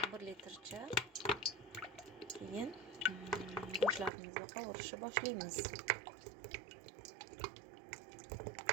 1 litrcha. Keyin go'shtlarimizni qovurishni boshlaymiz.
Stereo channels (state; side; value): drops out; left; at 4.1 s